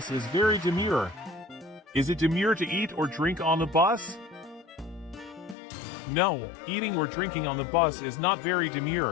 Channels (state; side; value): drops out; right; at 5.6 s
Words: is very demure. Is it demure to eat or drink on the bus? No, eating or drinking on the bus is not very